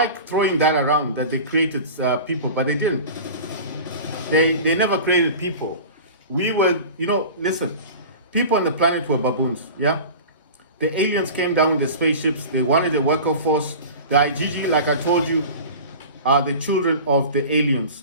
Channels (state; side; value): inverted; both; correlation -0.36